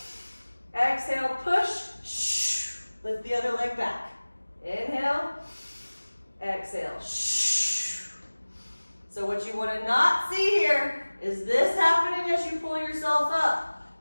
exhale, push, lift the other leg back. Inhale, exhale, So what you want to not see here is this happening as you pull yourself up.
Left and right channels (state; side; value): inverted; both; correlation -1.00